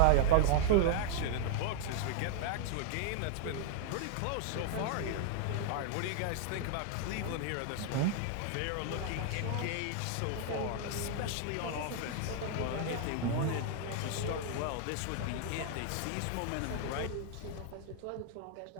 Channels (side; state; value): both; different; correlation -0.01